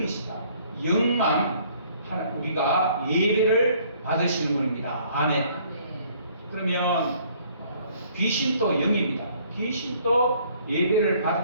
영만 우리가 예배를 받으시는 분입니다. 아멘. 그러면 귀신도 영입니다. 귀신도 예배를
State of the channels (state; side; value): inverted; both; correlation -0.60